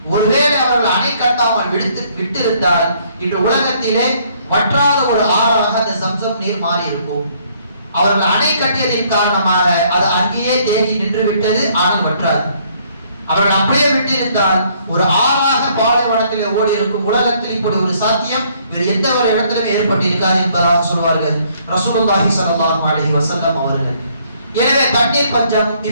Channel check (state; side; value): inverted; both; correlation -0.65